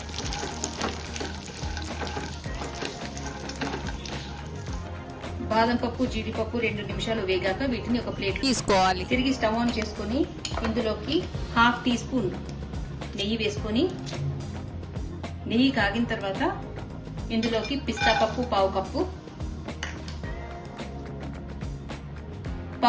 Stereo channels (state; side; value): identical; both; correlation 1.00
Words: బాదం పప్పు జీడిపప్పు 2 నిమిషాలు వేగాక వీటిని ఒక ప్లేట్ తీసుకోవాలి। తిరిగి స్టవ్ ఆన్ చేసుకొని ఇందులోకి హాఫ్ టీ స్పూన్ నెయ్యి వేసుకొని నెయ్యి కాగిన తర్వాత ఇందులోకి పిస్తా పప్పు పావు